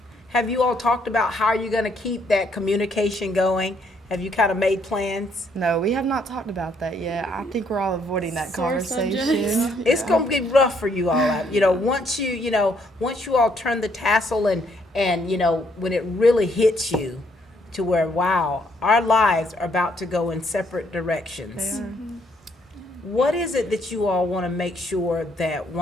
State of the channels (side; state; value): both; normal; correlation 0.70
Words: Have you all talked about how you're going to keep that communication going? Have you kind of made plans? No, we have not talked about that yet. I think we're all avoiding that Sore conversation. subjects. It's going to be rough for you all. You know, once you all turn the tassel and you know, when it really hits you to where, wow, our lives are about to go in separate directions. They are. What is it that you all want to make sure that